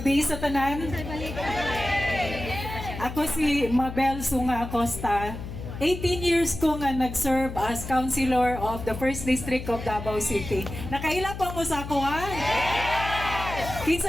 sa tanan. Ako si Mabel Sunga Acosta. 18 years ko nga nag-serve as councilor of the 1st District of Davao City. Nakaila pa mo sa ako, ha?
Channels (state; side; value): noise; left; hum, 9 dB below the sound